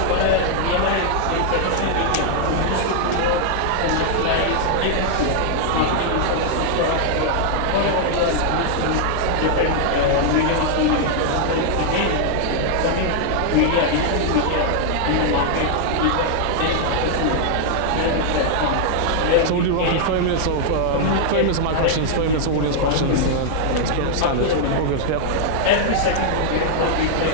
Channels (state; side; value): different; both; correlation 0.00